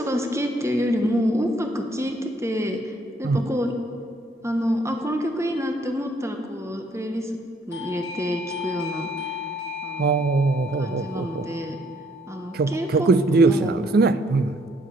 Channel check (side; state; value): both; normal; correlation 0.66